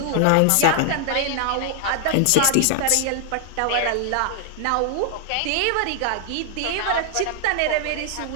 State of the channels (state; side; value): different; both; correlation 0.00